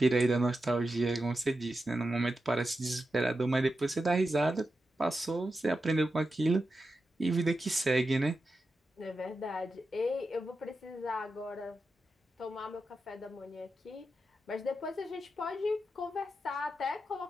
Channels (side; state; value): both; normal; correlation 0.89